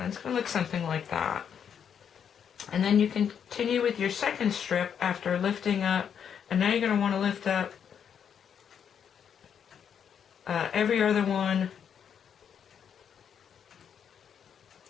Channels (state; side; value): quieter; right; 7.9 dB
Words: And it's going to look something like that. And then you continue with your second strip after lifting up, and now you're going to want to lift up every other one